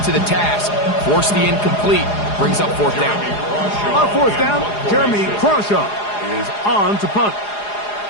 to the task. Forced the incomplete, brings up 4th down. On 4th down, Jeremy Crawshaw is on to punt.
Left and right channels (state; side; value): late; right; 4.8 ms